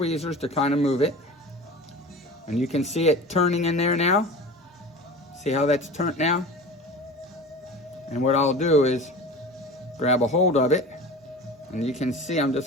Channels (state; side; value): normal; both; correlation 0.36